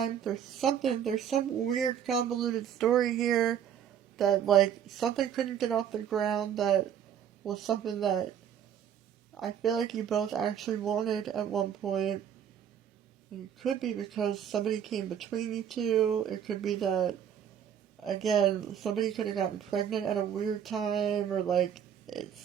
There's some weird convoluted story here that, like, something couldn't get off the ground that was something that I feel like you both actually wanted at one point. It could be because somebody came between you two. It could be that again, somebody could have gotten pregnant at a weird time, or like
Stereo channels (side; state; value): left; quieter; 8.9 dB